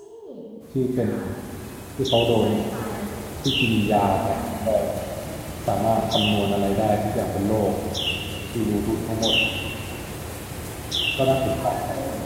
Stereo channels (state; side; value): identical; both; correlation 1.00